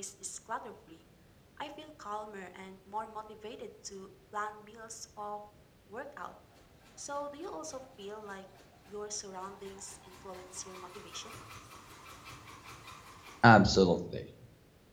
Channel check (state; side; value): identical; both; correlation 1.00